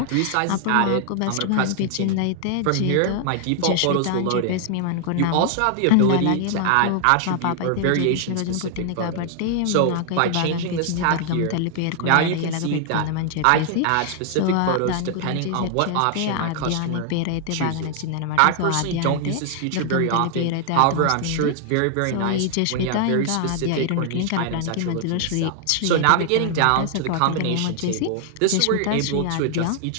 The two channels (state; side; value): different; both; correlation 0.00